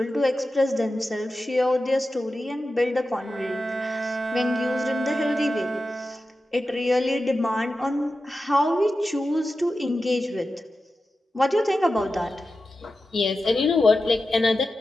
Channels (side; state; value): both; normal; correlation 0.92